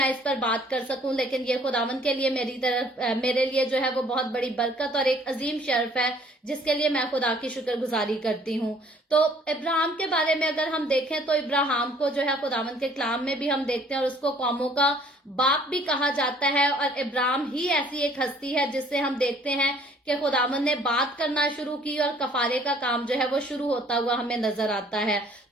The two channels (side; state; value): both; normal; correlation 0.58